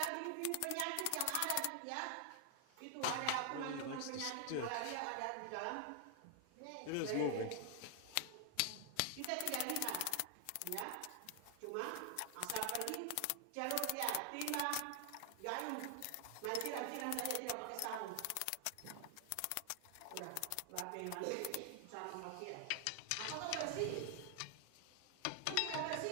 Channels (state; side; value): different; both; correlation 0.00